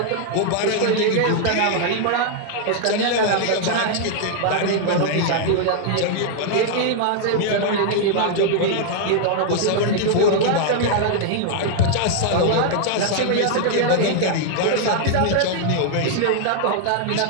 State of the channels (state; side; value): different; both; correlation 0.00